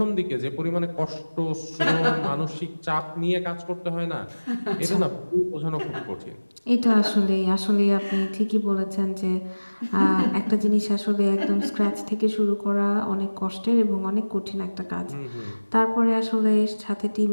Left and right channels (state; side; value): inverted; both; correlation -1.00